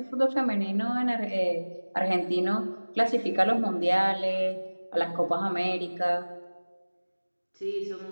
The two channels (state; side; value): inverted; both; correlation -1.00